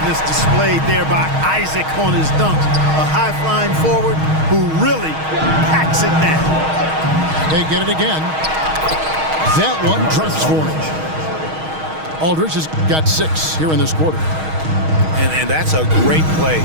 displayed there by Isaac on his dunks. A high-flying forward who really packs it down. They get it again. That one drops for him. Aldridge has got 6 here in this quarter. And that's a great play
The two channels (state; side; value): late; left; 6.4 ms